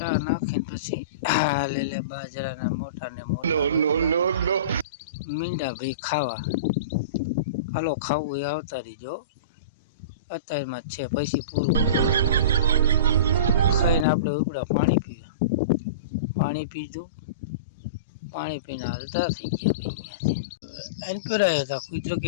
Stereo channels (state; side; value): inverted; both; correlation -0.31